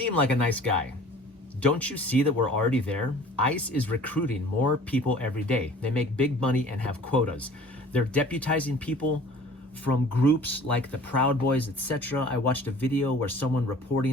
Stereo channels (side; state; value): both; normal; correlation 0.48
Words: like a nice guy. Don't you see that we're already there? ICE is recruiting more people every day. They make big money and have quotas. They're deputizing people from groups like the Proud Boys, etc. I watched a video where someone